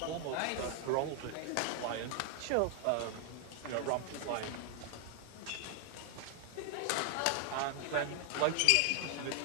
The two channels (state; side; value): different; both; correlation 0.00